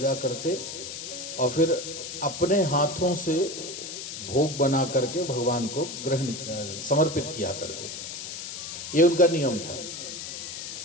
करते और फिर अपने हाथों से भोग बना करके भगवान को ग्रहण समर्पित किया करते थे। ये उनका नियम था।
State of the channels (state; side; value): noise; left; hiss, 8 dB below the sound